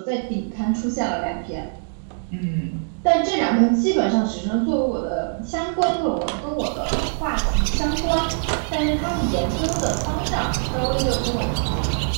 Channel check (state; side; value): silent; left; digital silence